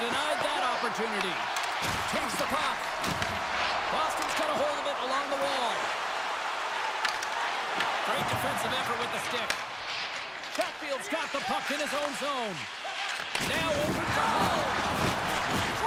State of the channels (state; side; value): identical; both; correlation 1.00